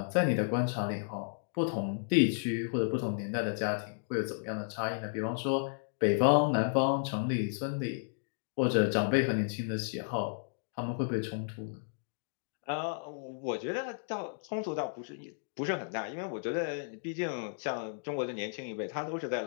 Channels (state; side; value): silent; right; digital silence